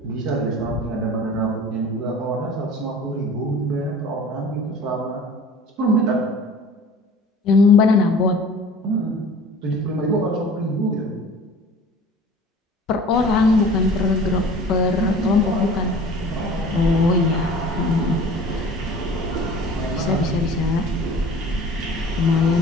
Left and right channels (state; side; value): normal; both; correlation 0.44